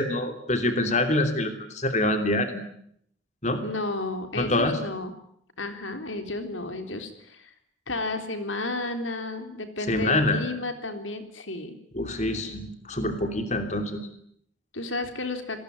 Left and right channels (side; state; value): both; normal; correlation 0.19